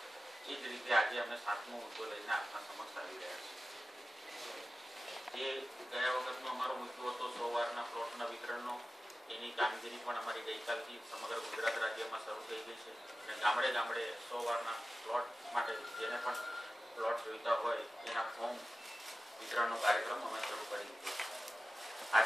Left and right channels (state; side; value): normal; both; correlation 0.95